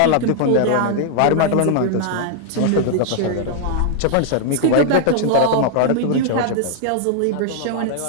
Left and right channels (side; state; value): both; different; correlation -0.01